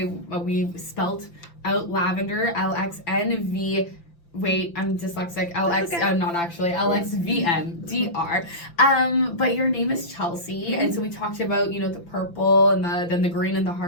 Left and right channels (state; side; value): late; right; 5.8 ms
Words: we spelt out lavender, LXNV, wait, I'm dyslexic, not actually, LXVNDR. But your name is Chelsea, and so we talked about, the purple and then the green and the